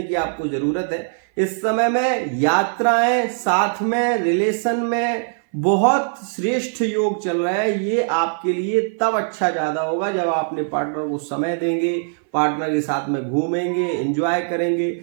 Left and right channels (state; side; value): silent; left; 58 dB below the other